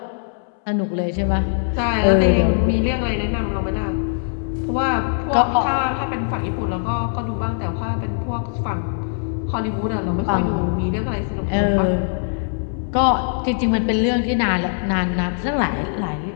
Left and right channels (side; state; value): right; silent; 65 dB below the other